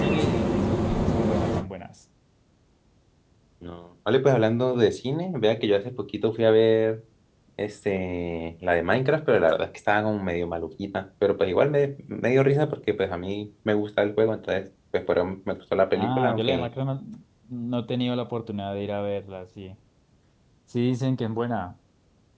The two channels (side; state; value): both; identical; correlation 1.00